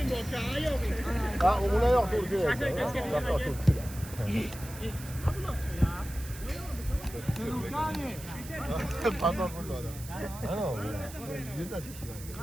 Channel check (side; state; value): right; noise; hiss, 15 dB below the sound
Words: Ha, o'g'li yo'q to'g'ri kerak. Pazar bo'ldi odam. Ana u. Yerda ketdilar.